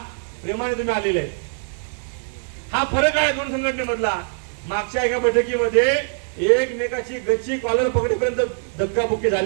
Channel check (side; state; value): left; silent; digital silence